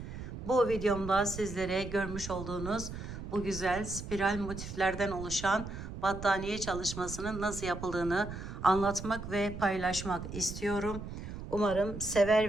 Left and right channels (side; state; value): right; noise; rumble, 9 dB below the sound